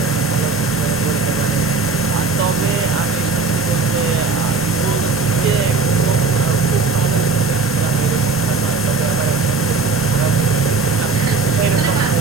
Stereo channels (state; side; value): quieter; left; 4.2 dB